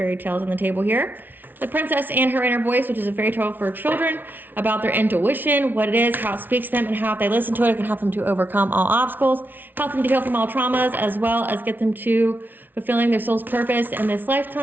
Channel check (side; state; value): left; late; 0.089 ms